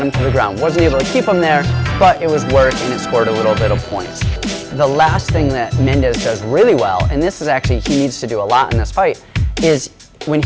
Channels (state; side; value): identical; both; correlation 1.00